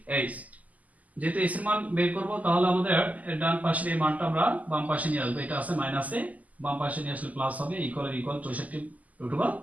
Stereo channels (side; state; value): left; late; 0.076 ms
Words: যেহেতু h এর মান বের করব, তাহলে আমাদের ডান পাশের এই মানটা আমরা বাম পাশে নিয়ে আসবো। এটা আছে মাইনাসে, বাম পাশে নিয়ে আসলে প্লাস হবে ইকুয়াল 64